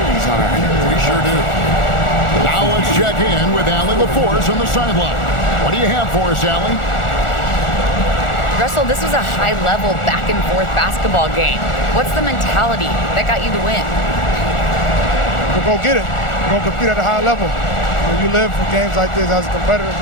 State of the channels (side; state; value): right; late; 1.4 ms